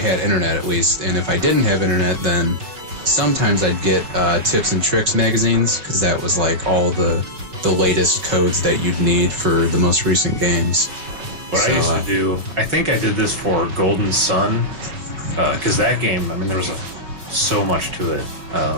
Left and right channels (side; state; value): left; late; 5.1 ms